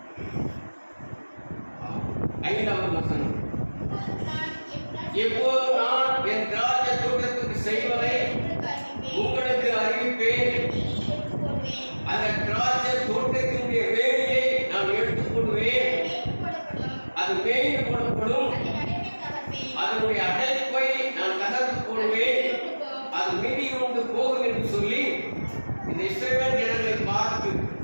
5வது வசனம். இப்போது நான் என் திராட்சை தோட்டத்துக்கு செய்வதை உங்களுக்கு அறிவிப்பேன். அந்த திராட்சை தோட்டத்தினுடைய வேலியை நான் எடுத்துக்கொள்வேன். அது மேய்ந்து போடப்படும். அதனுடைய அடைப்பை நான் தகர்த்து போடுவேன். அது மிதி கொண்டு போகும் என்று சொல்லி இந்த இஸ்ரவேல் ஜனங்களை பார்த்து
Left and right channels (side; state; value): both; inverted; correlation -1.00